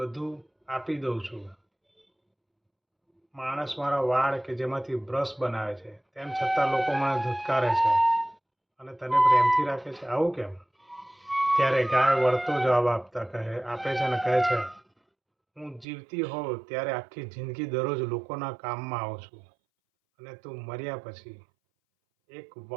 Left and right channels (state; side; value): drops out; left; at 15.9 s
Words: આપી દઉં છું. માણસ મારા વાળ કે જેમાંથી બ્રશ બનાવે છે, તેમ છતાં લોકો મને ધુતકારે છે અને તને પ્રેમથી રાખે છે. આવું કેમ? ત્યારે ગાય વળતો જવાબ આપે છે અને કહે છે, હું જીવતી હોઉં ત્યારે આખી જિંદગી દરરોજ લોકોના કામમાં આવું છું અને તું મર્યા પછી એક